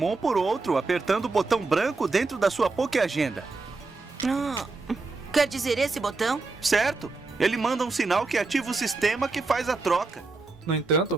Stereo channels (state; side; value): quieter; left; 3.7 dB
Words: por outro apertando o botão branco dentro da sua Pokéagenda. Quer dizer esse botão? Certo! Ele manda um sinal que ativa o sistema que faz a troca. No